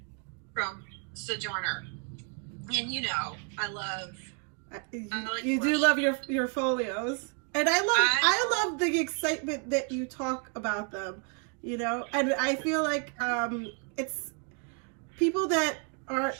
From Sojourner. And I love you do love your folios. And I love the excitement that you talk about them. And I feel like it's people that are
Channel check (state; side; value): quieter; left; 38.2 dB